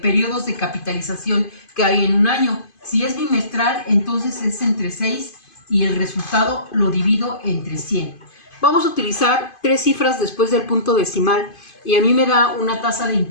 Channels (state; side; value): late; right; 2.5 ms